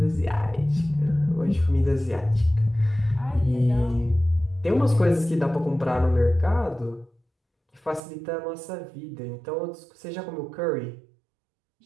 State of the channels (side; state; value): left; drops out; at 8.0 s